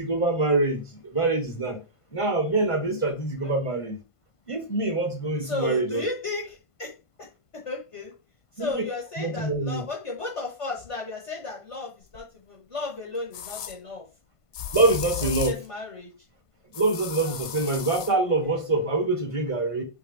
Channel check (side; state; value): right; late; 1.5 ms